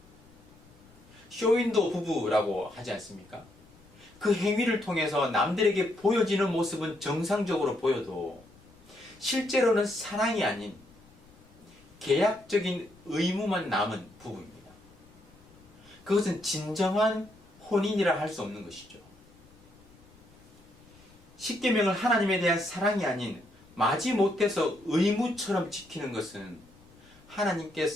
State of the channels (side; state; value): left; noise; rumble, 26 dB below the sound